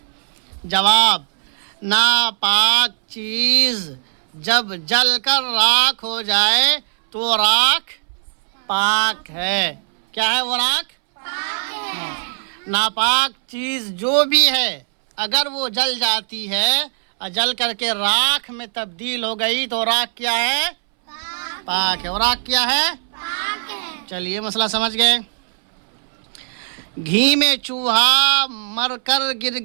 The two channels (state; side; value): silent; left; 63 dB below the other